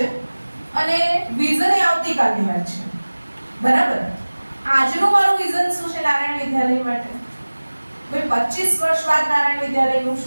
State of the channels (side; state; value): both; inverted; correlation -1.00